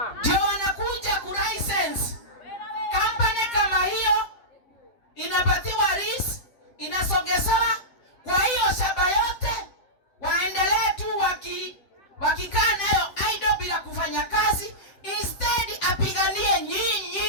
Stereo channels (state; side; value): late; right; 7.8 ms